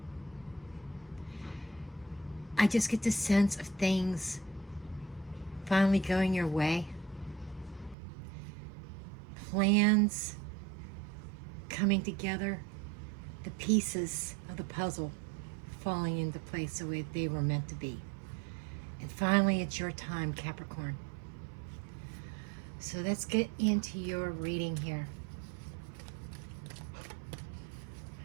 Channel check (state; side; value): drops out; left; at 8.0 s